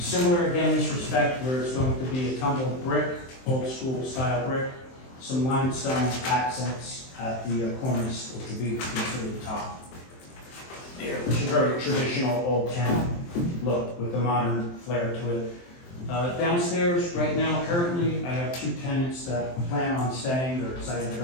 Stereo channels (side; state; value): right; late; 23 ms